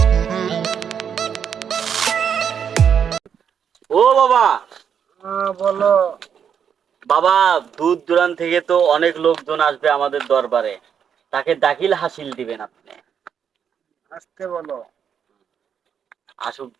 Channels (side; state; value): left; quieter; 7.8 dB